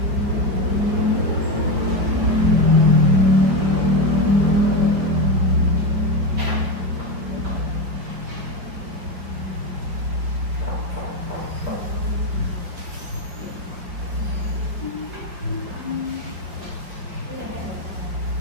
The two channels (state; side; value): late; left; 5.1 ms